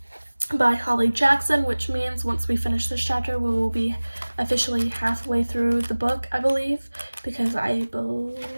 by Killjoy Ch6, which means once we finish this chapter, we will be officially halfway through the book, I believe, because I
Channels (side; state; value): both; inverted; correlation -1.00